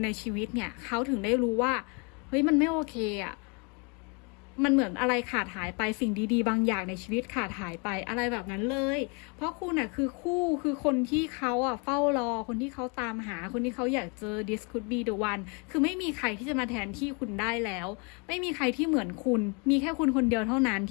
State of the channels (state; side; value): quieter; right; 33.8 dB